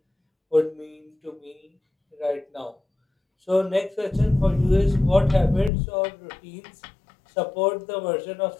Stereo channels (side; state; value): right; drops out; at 5.7 s